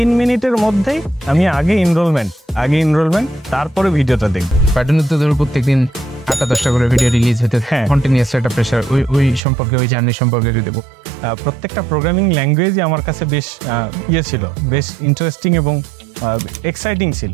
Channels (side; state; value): left; drops out; at 9.4 s